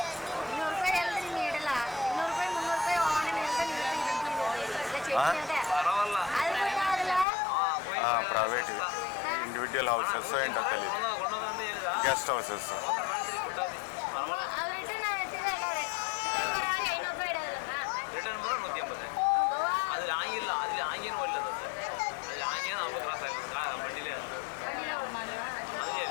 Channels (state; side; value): drops out; right; at 7.2 s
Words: పర్వాలా ప్రైవేట్ ఇండివిజువల్ హౌసెస్ ఏంటో తెలియదు, గెస్ట్ హౌసెస్.